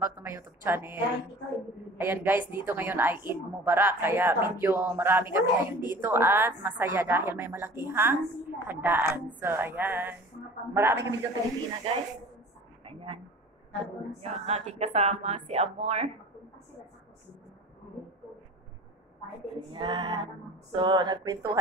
to my YouTube channel. Ayan guys, dito ngayon ay Eid Mubarak, kaya medyo marami kami ngayon dito at masaya dahil may malakihang handaan. So ayan, marami kami dito Pilipina guys. Ayan, yung aking kasama si Amor. Ayan, so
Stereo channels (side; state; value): both; normal; correlation 0.43